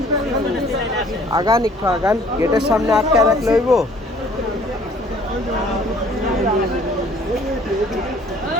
আগান একটু আগান, গেটের সামনে আটকে রাখলে হইব।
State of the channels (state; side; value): normal; both; correlation 0.56